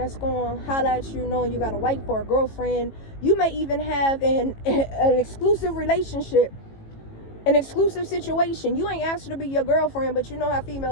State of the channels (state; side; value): late; right; 18 ms